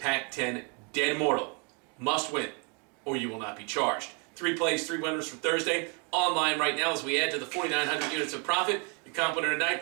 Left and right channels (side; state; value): left; quieter; 35.0 dB